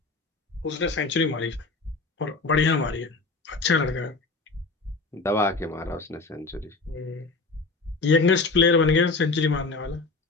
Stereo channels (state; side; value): quieter; right; 3.7 dB